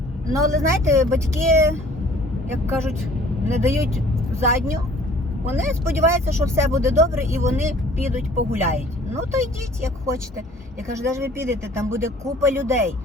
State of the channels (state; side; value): normal; both; correlation 0.53